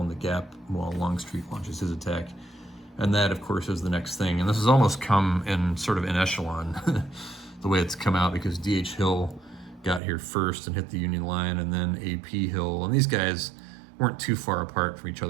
in the gap while Longstreet launches his attack. And that, of course, is the next thing. And this has almost come in sort of in echelon, the way it's come out, because D.H. Hill got here first and hit the Union line, and then A.P. Hill. And these guys weren't too far apart from each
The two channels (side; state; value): left; drops out; at 10.0 s